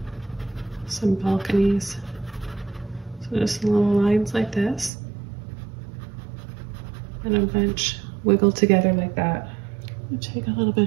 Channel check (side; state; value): left; drops out; at 4.9 s